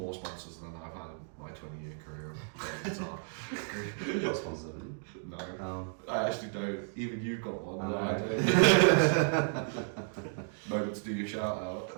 sponsors than I've had in my 20-year career of playing guitar. You've got sponsors, haven't you? No, Oh. I actually don't. Even you've got one. I No, I know. don't. Moment to do your shout out.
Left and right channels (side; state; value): left; silent; 56 dB below the other